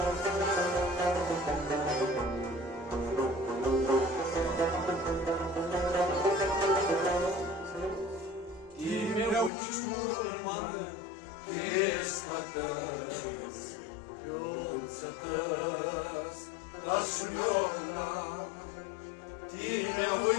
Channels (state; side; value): drops out; right; at 9.5 s